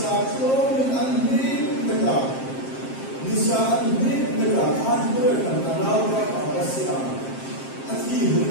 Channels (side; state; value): right; late; 7.5 ms